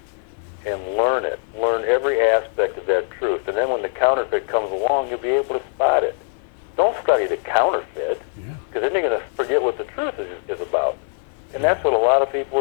and learn it. Learn every aspect of that truth. And then when the counterfeit comes along, you'll be able to spot it. Don't study the counterfeit, because then you're going to forget what the truth is about. And that's what a lot of people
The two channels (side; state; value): right; silent; 60 dB below the other